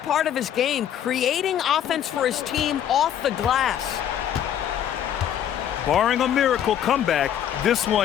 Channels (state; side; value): quieter; right; 10.1 dB